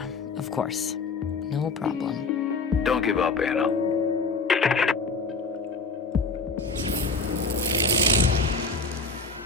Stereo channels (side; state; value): right; quieter; 3.7 dB